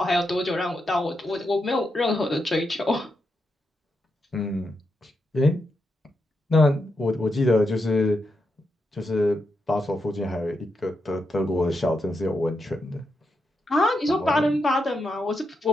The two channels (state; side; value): normal; both; correlation 0.84